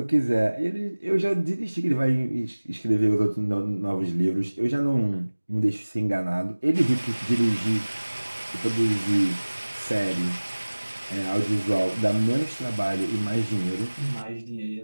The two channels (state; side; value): inverted; both; correlation -1.00